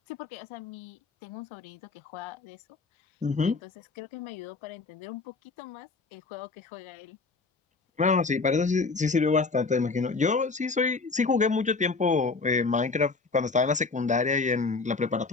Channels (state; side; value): quieter; right; 4.1 dB